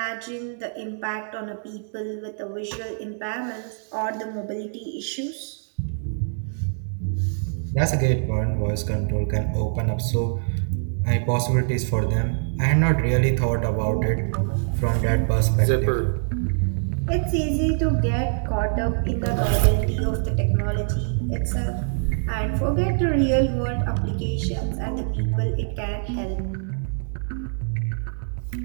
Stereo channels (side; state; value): left; silent; digital silence